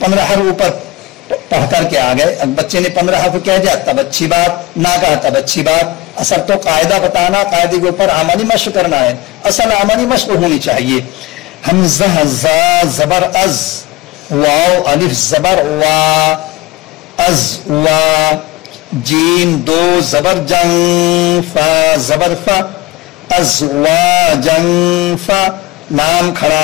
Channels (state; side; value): quieter; right; 20.1 dB